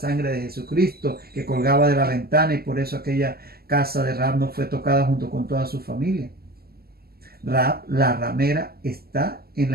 de Jesucristo, que colgaba de la ventana, y por eso aquella casa de Rahab no fue tocada junto con toda su familia. Rahab, la ramera, está en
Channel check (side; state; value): left; late; 0.45 ms